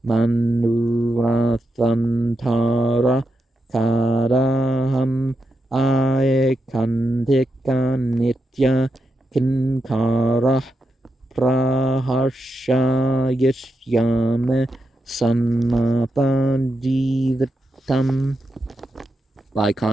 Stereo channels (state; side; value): normal; both; correlation 0.85